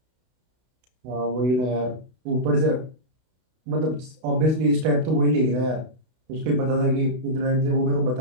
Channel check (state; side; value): late; left; 32 ms